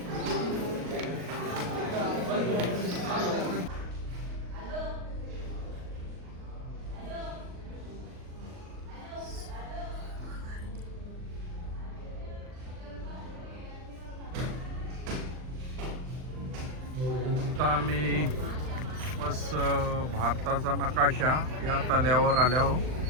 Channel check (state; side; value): late; left; 39 ms